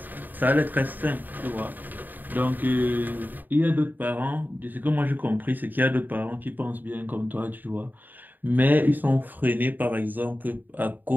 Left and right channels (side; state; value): left; late; 0.088 ms